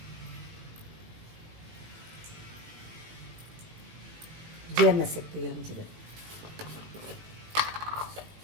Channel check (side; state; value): left; late; 18 ms